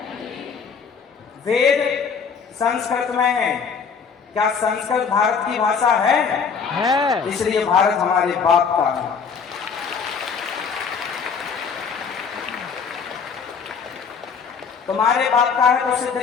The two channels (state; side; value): quieter; right; 6.0 dB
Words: वेद संस्कृत में है, क्या संस्कृत भारत की भाषा है? इसलिए भारत हमारे बाप का है। तुम्हारे बाप का है तो सिद्ध